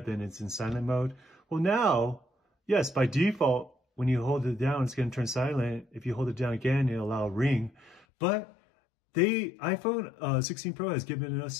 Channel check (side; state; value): right; drops out; at 8.1 s